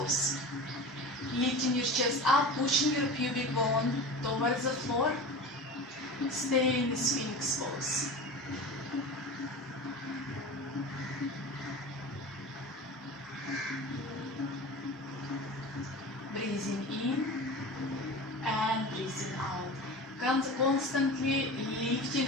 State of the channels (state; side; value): normal; both; correlation 0.32